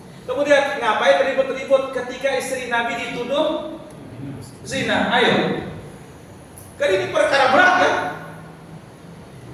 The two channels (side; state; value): both; identical; correlation 1.00